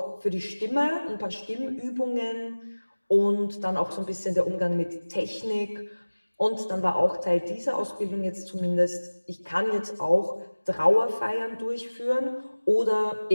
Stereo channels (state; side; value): inverted; both; correlation -1.00